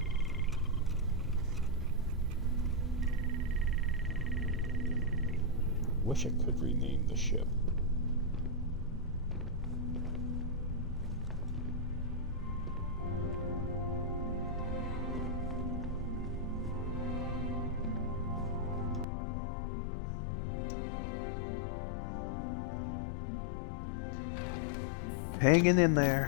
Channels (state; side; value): drops out; right; at 19.1 s